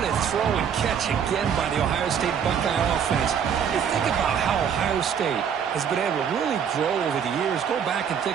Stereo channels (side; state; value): left; quieter; 7.7 dB